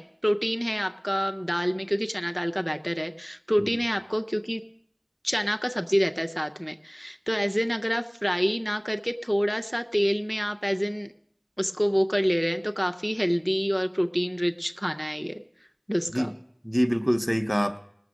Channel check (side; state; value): both; identical; correlation 1.00